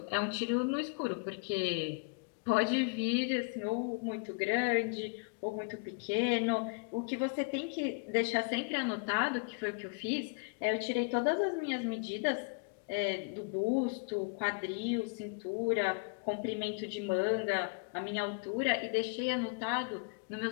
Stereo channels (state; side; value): quieter; right; 34.0 dB